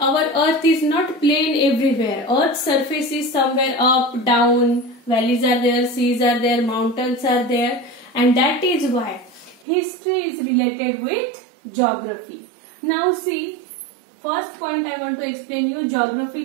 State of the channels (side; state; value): left; drops out; at 9.7 s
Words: earth is not plain everywhere. Earth's surface is somewhere up, down, valleys are there, seas are there, mountains are there, and that is why history is related with geography. Now see, first point I want to explain you